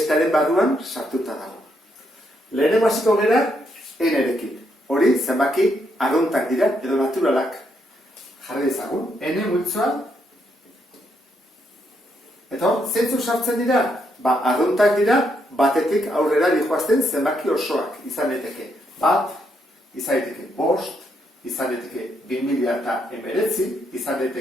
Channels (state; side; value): normal; both; correlation 0.77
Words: barruan sartuta dago. Lehenengo hasiko gera N-rekin. Hori zenbaki arruntak dira edo naturalak. Jarri dezagun, N multzoa. Eta zeintzuk sartzen dira? Arruntak dira batetik aurrera dihoazten zenbaki osoak izan daiteke. Bat, izan daiteke 5, izan daiteke 2019, izan